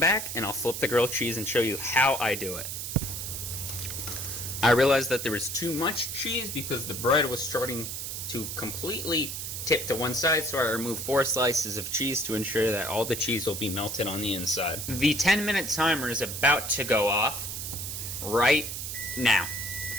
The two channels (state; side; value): noise; right; hiss, 5 dB below the sound